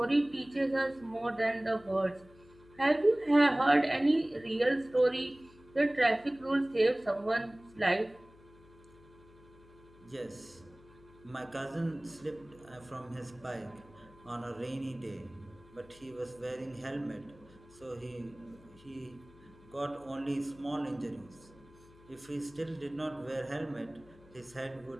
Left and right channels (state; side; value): noise; left; hum, 24 dB below the sound